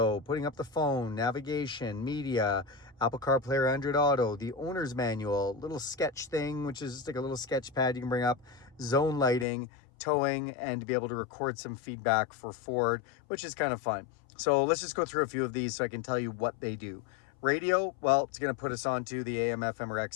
putting up the phone, navigation, media, Apple CarPlay or Android Auto, the owner's manual, little sketch thing, which is just like a little sketch pad you can bring up, zone lighting, towing, and to be able to record some feedback for Ford, which is kind of fun. So let's just go through a few of these so I can tell you what they do. Radio, well, it's going to put us onto the AM, FM, or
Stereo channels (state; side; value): drops out; right; at 9.5 s